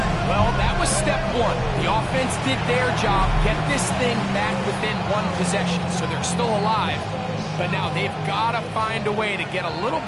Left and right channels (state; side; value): identical; both; correlation 1.00